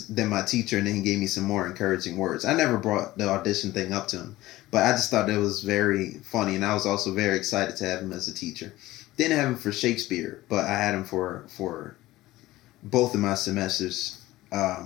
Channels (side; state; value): right; quieter; 17.2 dB